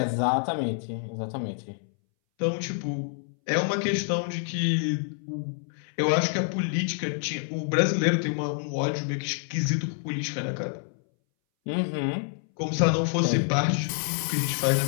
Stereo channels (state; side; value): silent; right; 60 dB below the other